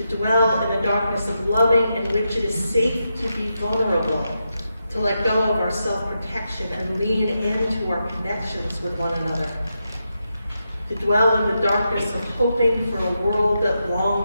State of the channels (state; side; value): inverted; both; correlation -0.86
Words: dwell in the darkness of loving in which it is safe to be vulnerable, to let go of our self-protection and lean into our connections with one another, to dwell in the darkness of hoping for a world that